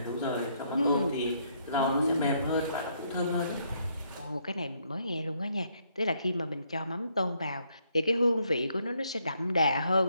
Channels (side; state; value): both; inverted; correlation -0.72